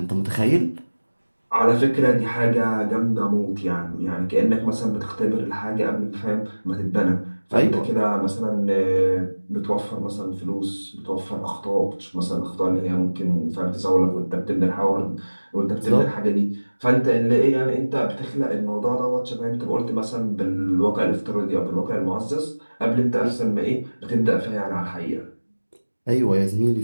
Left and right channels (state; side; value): inverted; both; correlation -1.00